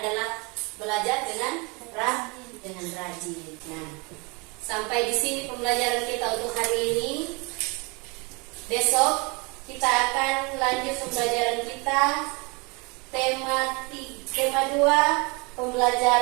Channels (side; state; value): left; quieter; 29.4 dB